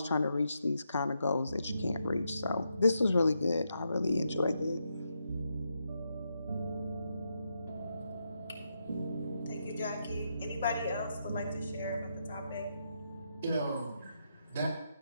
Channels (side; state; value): both; inverted; correlation -0.82